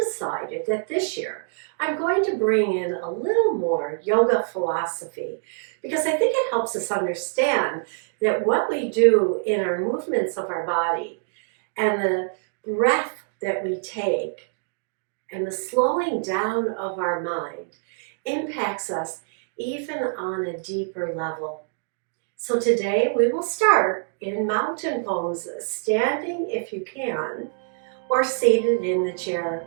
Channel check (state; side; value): silent; left; digital silence